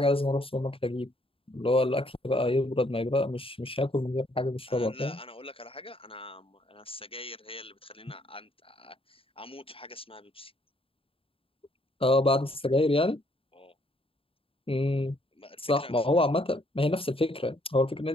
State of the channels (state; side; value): late; right; 0.27 ms